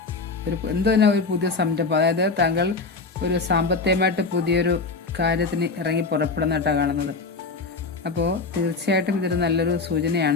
ഒരു പുതിയ സംരംഭം. അതായത് താങ്കൾ ഒരു സാമ്പത്തികമായിട്ട് പുതിയൊരു കാര്യത്തിന് ഇറങ്ങി പുറപ്പെടുന്നതായിട്ടാണ് കാണുന്നത്. അപ്പോൾ തീർച്ചയായിട്ടും ഇതൊരു നല്ലൊരു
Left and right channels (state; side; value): quieter; right; 4.0 dB